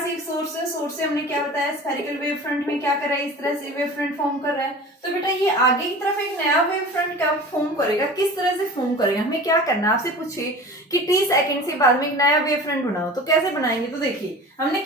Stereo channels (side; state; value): both; normal; correlation 0.37